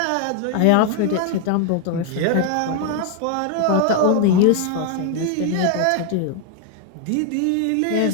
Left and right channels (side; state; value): both; different; correlation 0.00